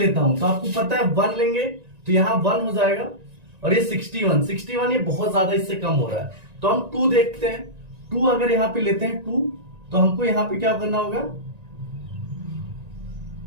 हूं तो आपको पता है 1 लेंगे तो यहां 1 हो जाएगा, और ये 61 ये बहुत ज्यादा इससे कम हो रहा है। तो हम 2 देखते हैं, 2 अगर यहां पे लेते हैं 2, तो हमको यहां पे क्या करना होगा,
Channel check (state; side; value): late; left; 1.9 ms